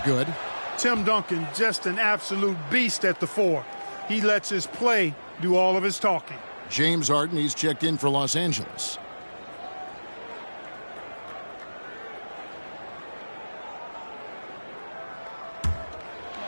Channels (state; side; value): inverted; both; correlation -1.00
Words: good. Tim Duncan, just an absolute beast at the 4. He lets his play do all of his talking. James Harden, he's checked in for Los Angeles.